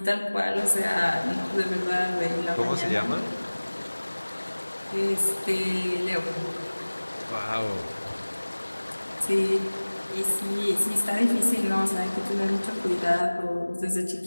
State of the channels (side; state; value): both; inverted; correlation -1.00